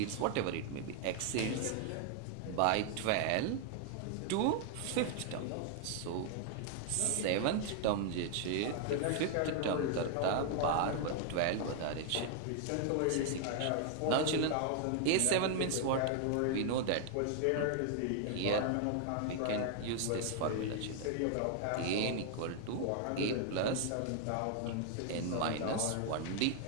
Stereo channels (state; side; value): different; both; correlation 0.00